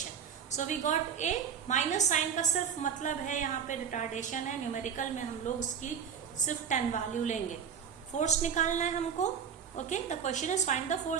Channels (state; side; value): quieter; left; 7.5 dB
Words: So we got a. Minus sign का सिर्फ मतलब है यहाँ पे रिटार्डेशन है. न्यूमेरिकल में हम लोग उसकी सिर्फ 10 वैल्यू लेंगे. फोर्स निकालना है हमको. Okay, the question is find the